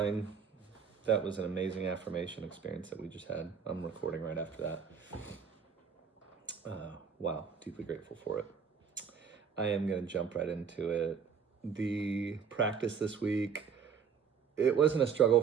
That was an amazing affirmation experience that we just had. I'm recording right after that. Wow, deeply grateful for it. I am going to jump right into it. The practice this week, it wasn't a struggle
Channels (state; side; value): quieter; left; 6.5 dB